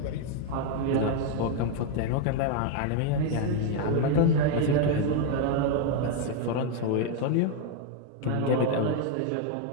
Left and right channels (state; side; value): different; both; correlation 0.01